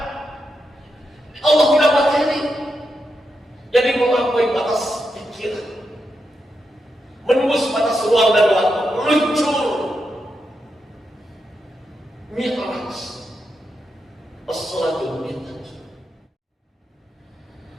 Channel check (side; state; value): both; normal; correlation 0.85